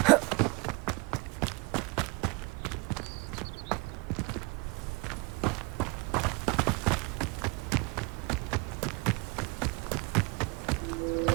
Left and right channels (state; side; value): quieter; left; 28.5 dB